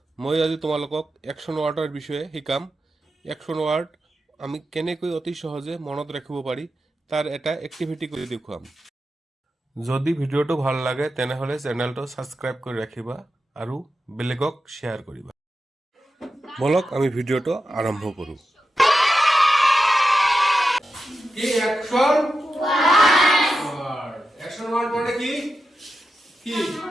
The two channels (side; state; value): both; normal; correlation 0.90